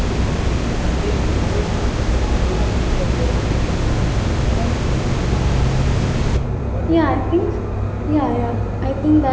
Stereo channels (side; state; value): both; identical; correlation 1.00